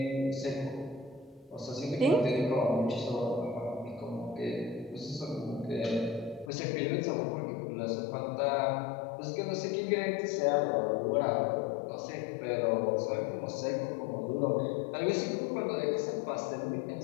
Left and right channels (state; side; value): drops out; right; at 6.5 s